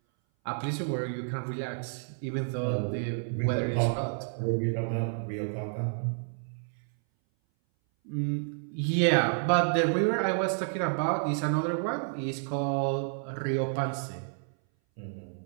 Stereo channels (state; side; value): silent; left; 58 dB below the other